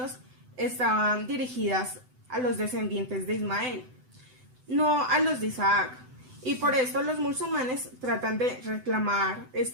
estaban dirigidas a los descendientes de Ismael, no a los de Isaac. Y por esto los musulmanes tratan de reclamar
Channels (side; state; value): left; late; 7.9 ms